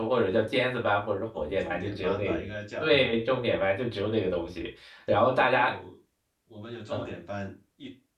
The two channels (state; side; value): identical; both; correlation 1.00